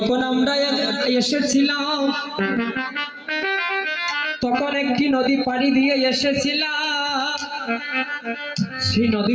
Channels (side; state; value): both; identical; correlation 1.00